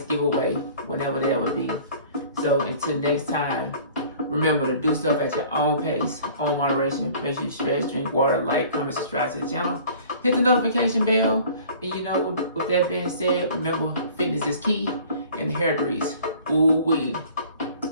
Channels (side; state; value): both; inverted; correlation -0.49